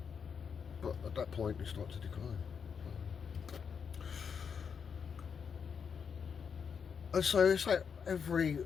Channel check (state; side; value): quieter; right; 6.5 dB